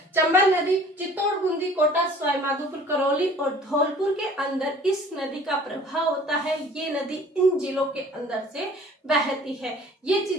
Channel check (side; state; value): both; normal; correlation 0.50